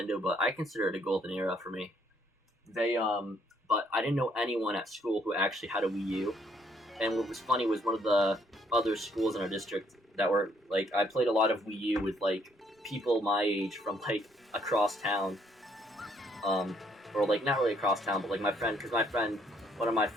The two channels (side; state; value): both; normal; correlation 0.68